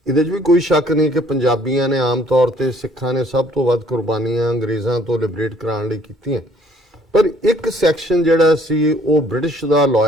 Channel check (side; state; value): both; normal; correlation 0.60